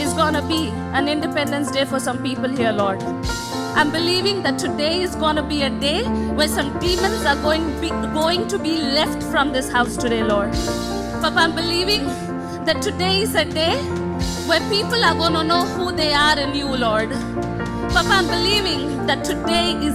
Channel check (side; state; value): both; identical; correlation 1.00